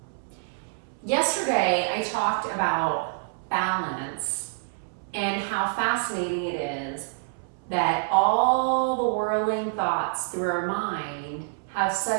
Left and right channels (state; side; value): silent; left; 60 dB below the other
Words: Yesterday, I talked about balance and how fascinating it is that all the whirling thoughts through our mind have